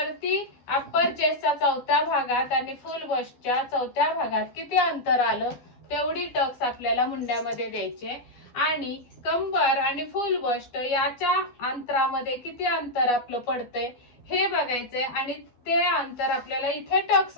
अप्पर चेस्टच्या चौथ्या भागात आणि फुल बस्टच्या चौथ्या भागात किती अंतर आलं तेवढी टक्स आपल्याला मुंड्यामध्ये द्यायचे. आणि कंबर आणि फुल बस्ट याच्या अंतरामध्ये किती अंतर आपलं पडतंय हे बघायचंय आणि ते अंतर आपल्याला इथे टक्स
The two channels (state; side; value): late; right; 12 ms